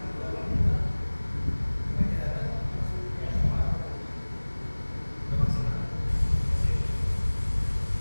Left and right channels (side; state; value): both; inverted; correlation -1.00